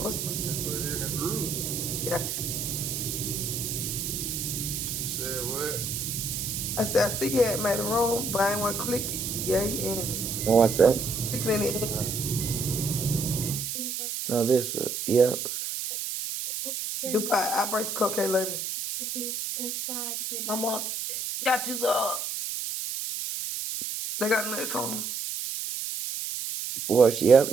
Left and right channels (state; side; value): noise; right; hiss, 4 dB below the sound